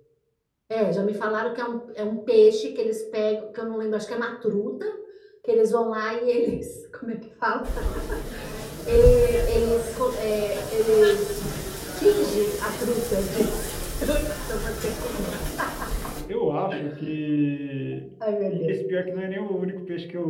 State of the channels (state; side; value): identical; both; correlation 1.00